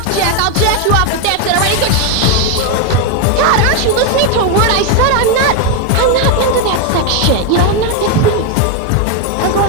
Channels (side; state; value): both; different; correlation 0.01